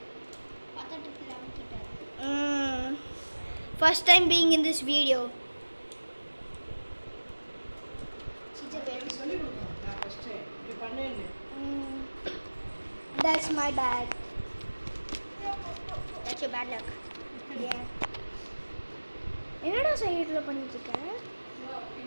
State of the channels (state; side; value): inverted; both; correlation -1.00